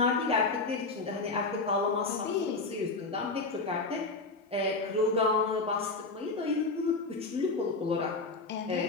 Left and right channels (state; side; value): quieter; right; 3.6 dB